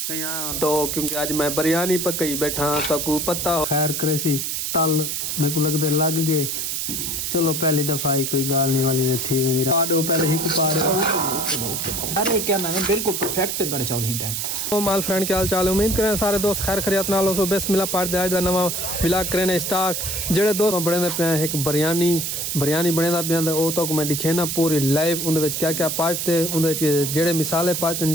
कहीं तो क्योंकि आज मैं बिरयानी पकई बैठा तकू पता खैर करे सी तल मेरे को लगते लग गए। चलो पहली दफा ही कोई गाल नहीं वाली में थी मेरी पाड़ो पहले ही पाड़ो। अरे क्या नाम है बिल्कुल परफेक्ट बने चावल ही टाइम। तो माल फ्रेंड क्या हाल चाल है उम्मीद करें सारे दोस्त खैर खरियत नाल हो। सो बिस्मिल्लाह पाड़ते आज दा नवा व्लॉग करें स्टार्ट। जेड़े दोस्त बने पे एक बिरयानी बने पे वो तो मैं दिखे ना पूरी लाइव उनके क्या क्या पाजते उनके जेड़े मिसाले पाजते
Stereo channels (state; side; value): noise; right; hiss, 2 dB below the sound